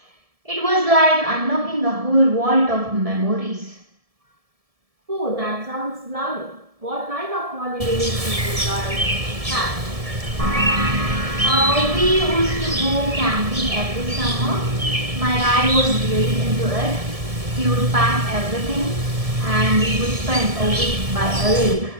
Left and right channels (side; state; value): left; late; 1.7 ms